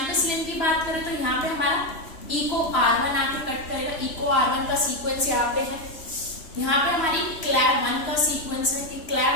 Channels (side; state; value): right; late; 3.0 ms